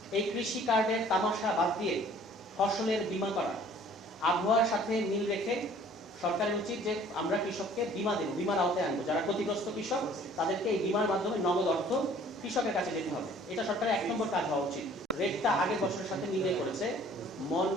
এই কৃষি কার্ডের তামাশা বাদ দিয়ে ফসলের বীমা করা। আবহাওয়ার সাথে মিল রেখে সরকারের উচিত যে আমরা কৃষককে বীমা দেব, বীমার আওতায় আনবো। যারা ক্ষতিগ্রস্ত কৃষক তাদেরকে এই বীমার মাধ্যমে নগদ অর্থ কৃষকের কাছে যেতে হবে। এটা সরকারের 1 নম্বর কাজ হওয়া উচিত। রেটটা আগের বছরের সাথে মিলিয়ে করেছে,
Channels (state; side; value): normal; both; correlation 0.54